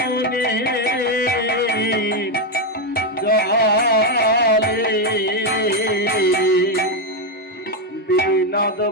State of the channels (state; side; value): normal; both; correlation 0.05